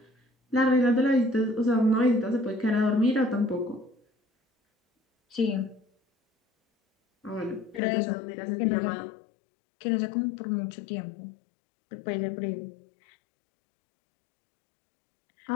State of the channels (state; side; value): drops out; right; at 7.8 s